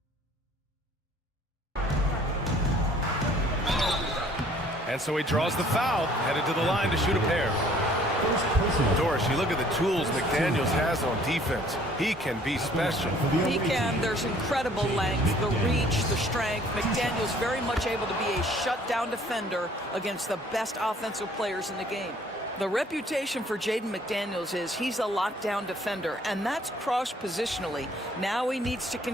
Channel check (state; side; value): normal; both; correlation 0.57